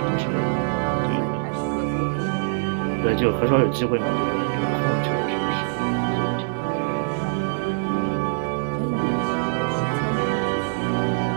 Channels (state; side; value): silent; left; digital silence